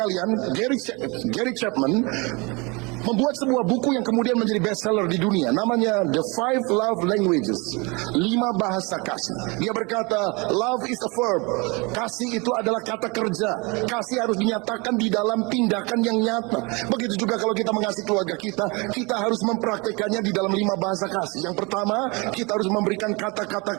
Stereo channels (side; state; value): left; quieter; 27.9 dB